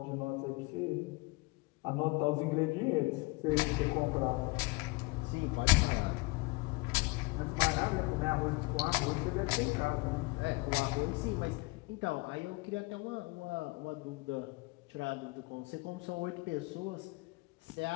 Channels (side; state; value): right; quieter; 26.0 dB